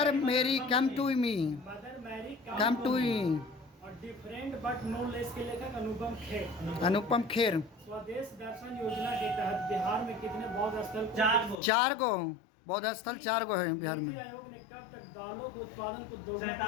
Mary come to me, mother Mary come to me. और डिफरेंट बट नो लेस के लेखक अनुपम खेर। अनुपम खेर। स्वदेश दर्शन योजना के तहत बिहार में कितने बौद्ध स्थल को 4 गो बौद्ध स्थल 4 गो है बिहार में। नीति आयोग ने कब तक दालों के उत्पादन को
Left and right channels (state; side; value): drops out; right; at 11.6 s